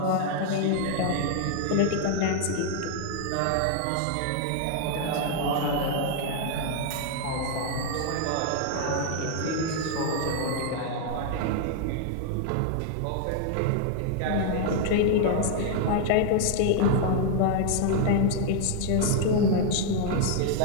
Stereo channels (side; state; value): both; different; correlation 0.00